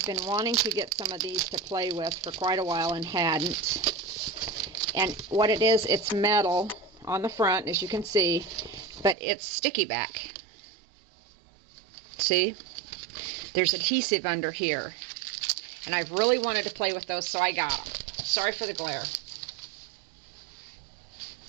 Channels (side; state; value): left; drops out; at 9.2 s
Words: been wanting to get some of these to play with for quite a while and hadn't. And what it is, it's metal on the front, as you can see, but it's sticky back. See? There's adhesive under here. And I've really wanted to play with those, so I got them. Sorry for the glare.